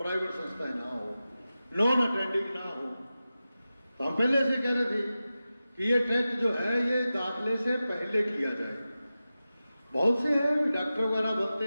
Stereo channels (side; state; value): both; inverted; correlation -0.94